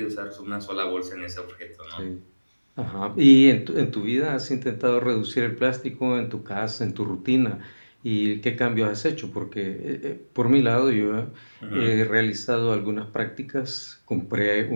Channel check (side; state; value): both; inverted; correlation -1.00